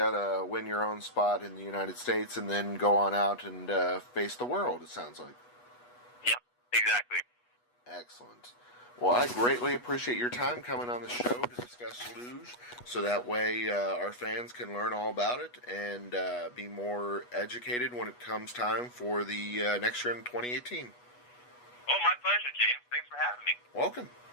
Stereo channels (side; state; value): right; late; 8.2 ms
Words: to win your own spot in the United States, and then go on out and face the world, it sounds like. Yeah, exactly. Excellent. Well, I greatly appreciate your time coming on the show to discuss luge, so that way our fans can learn all about it and be more educated when it comes time for the next year in 2018. Oh, my pleasure, James. Thanks for having me. Welcome.